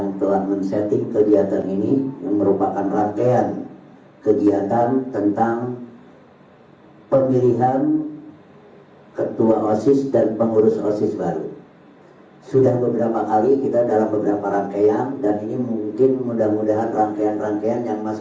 telah men-setting kegiatan ini, yang merupakan rangkaian kegiatan tentang pemilihan ketua OSIS dan pengurus OSIS baru. Sudah beberapa kali kita dalam beberapa rangkaian, dan ini mungkin mudah-mudahan rangkaian-rangkaian yang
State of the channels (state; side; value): identical; both; correlation 1.00